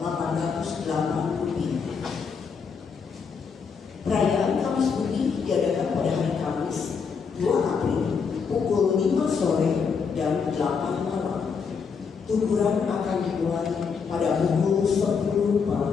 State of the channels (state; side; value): quieter; right; 5.8 dB